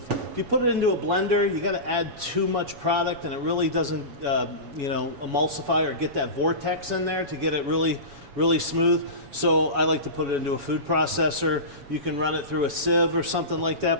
If you put it into a blender, you got to add too much product, and it really doesn't, you know, emulsify or get that vortex in there to get it really smooth. So I like to put it into a food processor. You can run it through a sieve or something like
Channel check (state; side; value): late; left; 7.1 ms